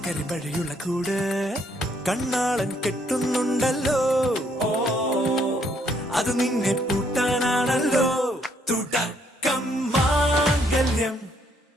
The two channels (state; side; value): normal; both; correlation 0.70